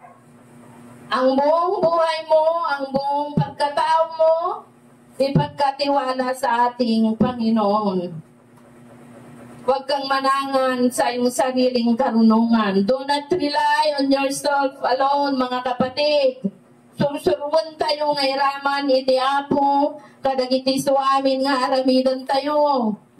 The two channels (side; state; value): both; identical; correlation 1.00